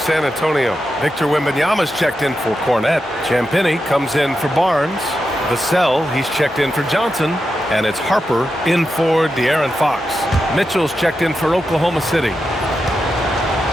Antonio. Victor Wembanyama's checked in for Cornette. Champagnie comes in for Barnes. Vassell, he's checked in for Johnson. And it's Harper in for De'Aaron Fox. Mitchell's checked in for Oklahoma City.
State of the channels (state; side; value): normal; both; correlation 0.88